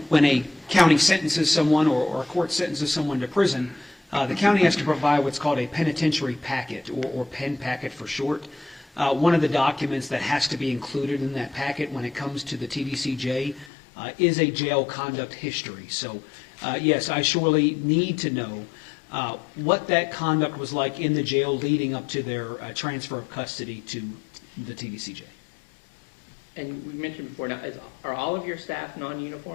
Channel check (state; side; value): drops out; right; at 13.7 s